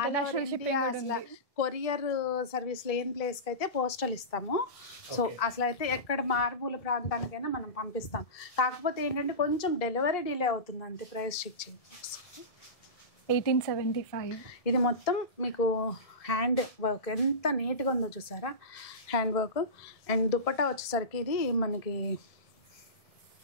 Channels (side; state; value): right; late; 1.7 ms